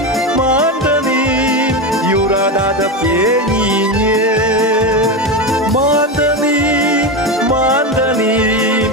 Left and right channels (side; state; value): both; normal; correlation 0.16